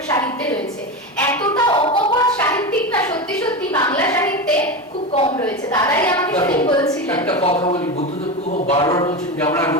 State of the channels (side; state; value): both; normal; correlation 0.20